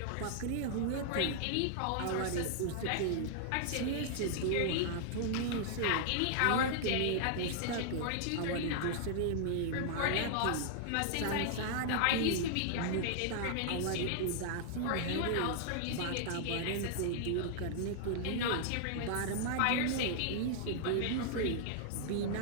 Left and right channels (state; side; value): different; both; correlation -0.01